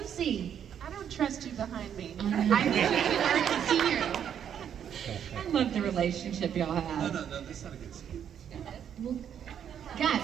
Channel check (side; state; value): left; quieter; 8.9 dB